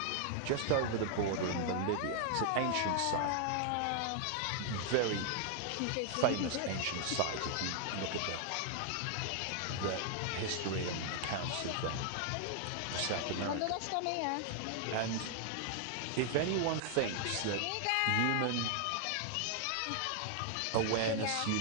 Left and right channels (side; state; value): both; different; correlation 0.00